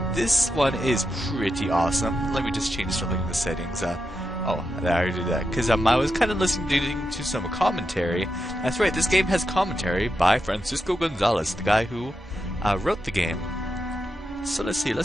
this one is pretty awesome. Let me just change something in the settings. Oh, I already did that because I was kind of listening to some commentary. That's right, this game has commentary by Francisco Gonzalez, the guy who wrote the game. So let's see,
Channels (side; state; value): both; normal; correlation 0.87